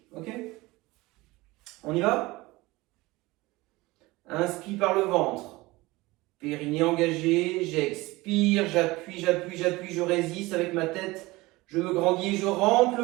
Ok ? On y va? Inspire par le ventre. Périnée engagé. J'expire, j'appuie, j'appuie, j'appuie, je résiste avec ma tête. Je me grandis et je rentre le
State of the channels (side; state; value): left; quieter; 21.0 dB